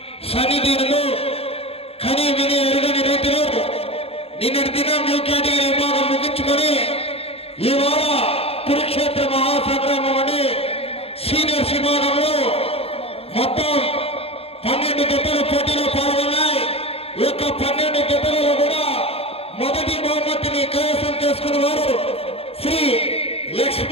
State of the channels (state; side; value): late; right; 0.28 ms